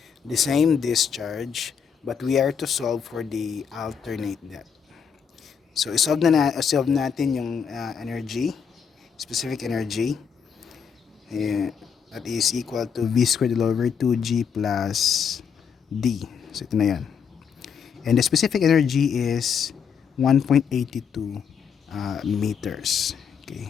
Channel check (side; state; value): right; quieter; 6.9 dB